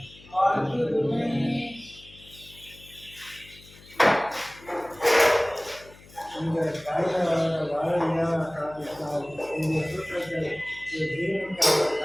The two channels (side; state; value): left; noise; hum, 23 dB below the sound